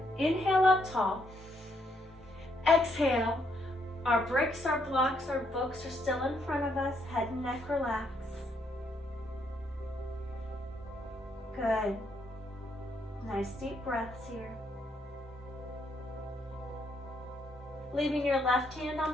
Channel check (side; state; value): both; normal; correlation 0.74